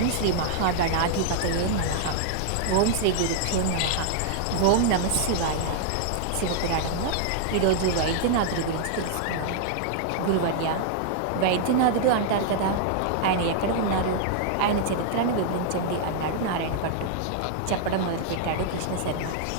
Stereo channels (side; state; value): both; different; correlation -0.01